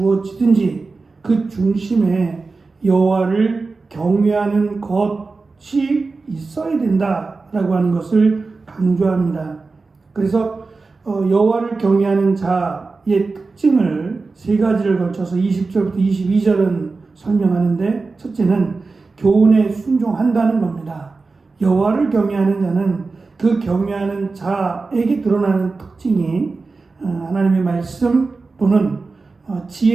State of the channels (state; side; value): quieter; left; 4.0 dB